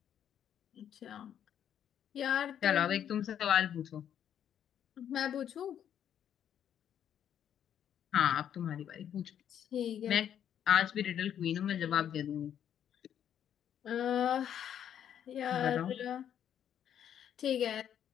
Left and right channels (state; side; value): quieter; right; 9.6 dB